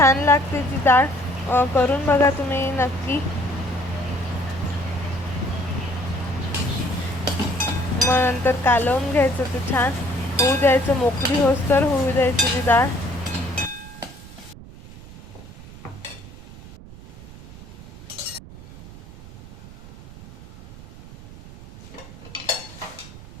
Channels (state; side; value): noise; right; rumble, 17 dB below the sound